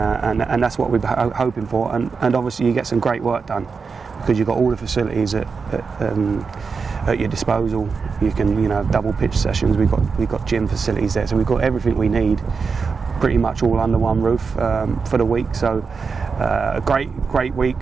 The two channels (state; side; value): quieter; left; 5.1 dB